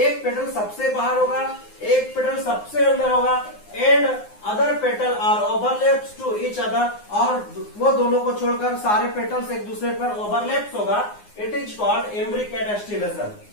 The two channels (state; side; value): late; right; 9.7 ms